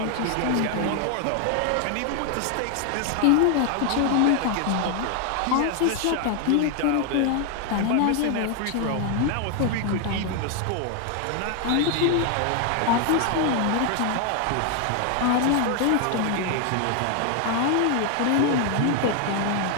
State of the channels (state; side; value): different; both; correlation 0.00